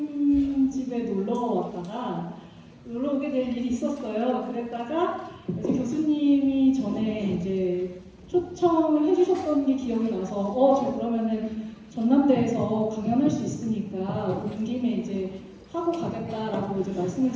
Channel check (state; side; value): identical; both; correlation 1.00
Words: 집에 놀러 오게 될 일이 있었어요. 그랬다가 이제 교수님이 전에 이제 초청을 해주셨던 게 기억이 나서 저 그러면은 전남대에서 강연할 수 있으니까 온 김에 이제 하고 가겠다라고 이제 말씀을